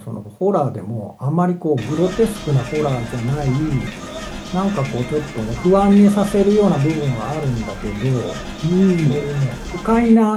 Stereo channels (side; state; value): both; identical; correlation 1.00